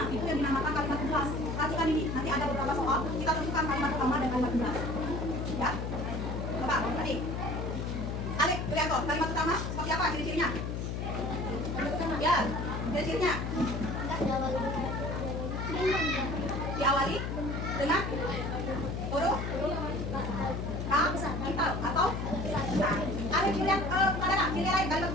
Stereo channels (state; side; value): noise; left; hum, 3 dB below the sound